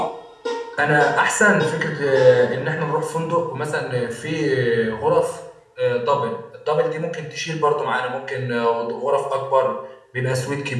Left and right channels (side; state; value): both; identical; correlation 1.00